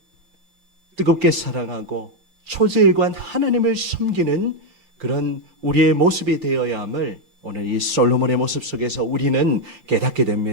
뜨겁게 사랑하고 초지일관 하나님을 섬기는 그런 우리의 모습이 되어야 함을 오늘 이 솔로몬의 모습 속에서 우리는 깨닫게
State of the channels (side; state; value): left; late; 5.8 ms